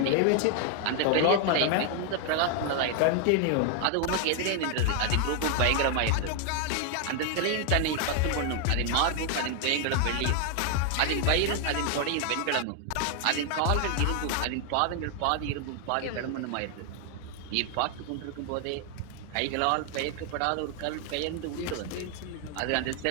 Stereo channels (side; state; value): both; different; correlation 0.00